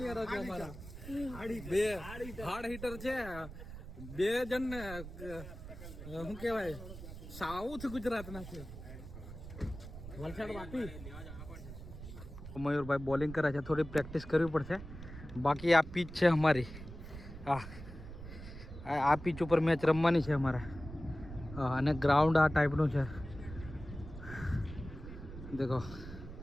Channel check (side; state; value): right; noise; rumble, 12 dB below the sound